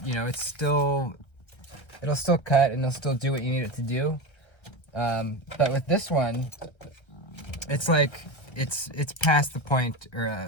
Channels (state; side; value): late; right; 1.3 ms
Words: it'll still cut and it'll still do what you need it to do. But with this one, it's like it's past the point, or